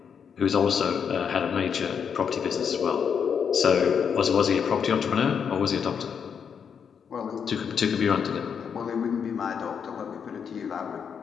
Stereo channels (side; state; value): right; quieter; 7.1 dB